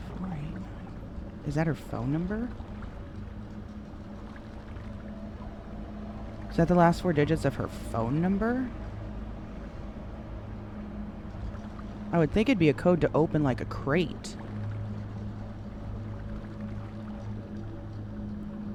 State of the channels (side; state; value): both; identical; correlation 1.00